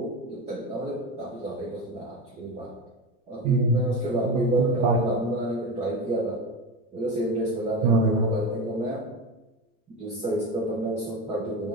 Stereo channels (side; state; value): both; normal; correlation 0.23